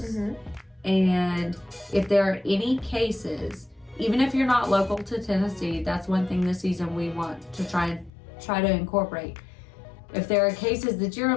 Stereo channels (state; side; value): drops out; right; at 8.1 s